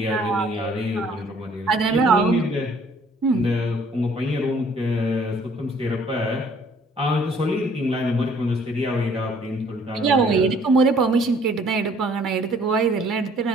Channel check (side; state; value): both; normal; correlation 0.59